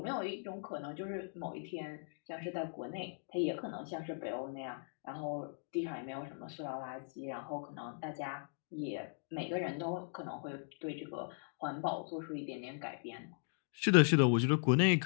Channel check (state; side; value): silent; right; digital silence